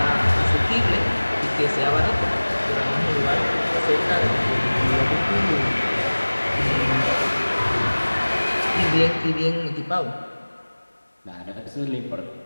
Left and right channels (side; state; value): both; inverted; correlation -1.00